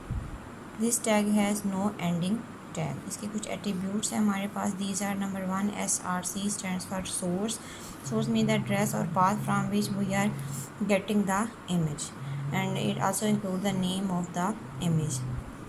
This tag has no ending tag. इसके कुछ attributes हैं हमारे पास. These are number 1 SRC stands for source. Source mean the address और path from which we are getting the image and it also include the name of the image.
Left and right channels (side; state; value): both; identical; correlation 1.00